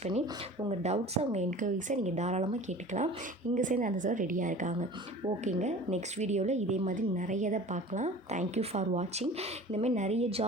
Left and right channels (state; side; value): normal; both; correlation 0.41